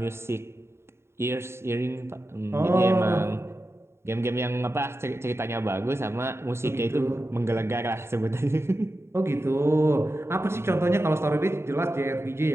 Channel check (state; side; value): late; left; 0.12 ms